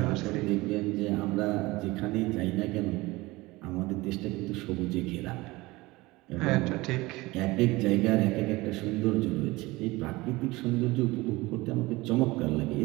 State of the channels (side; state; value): left; quieter; 21.0 dB